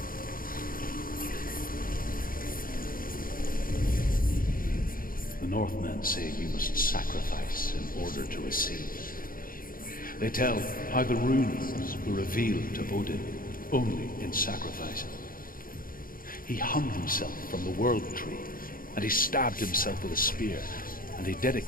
The Northmen say you must sacrifice in order to receive. They tell how the runes were revealed to Odin only in sacrifice. He hung himself from the World Tree, and he stabbed himself with a spear, and he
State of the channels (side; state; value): right; late; 0.41 ms